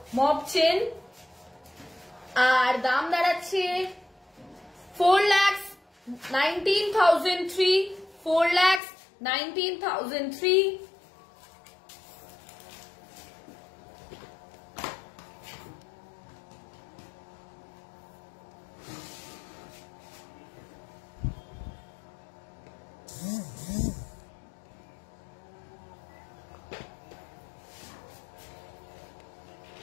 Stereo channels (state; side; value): drops out; right; at 8.8 s